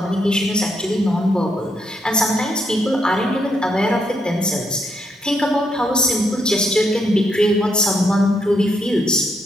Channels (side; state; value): both; normal; correlation 0.77